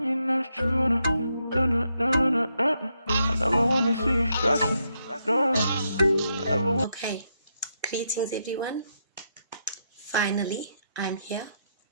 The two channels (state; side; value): inverted; both; correlation -0.80